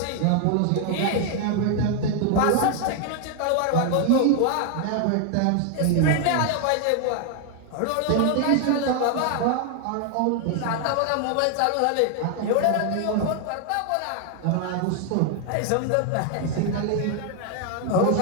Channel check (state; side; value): different; both; correlation 0.00